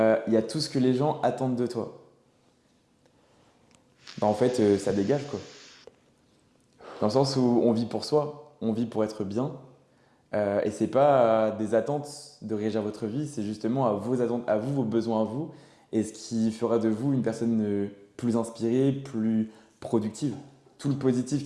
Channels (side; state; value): both; identical; correlation 1.00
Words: y a tout ce que les gens attendent de toi. Ben, en fait, ça dégage quoi. Dans le sens où on vit pour soi, on vit pour être bien. Et c'est pas des attentes de régir votre vie, c'est justement à vos attentes, à vous, vos besoins à vous, et ce qui fera de vous une personne plus inspirée, plus productive. Tout le positif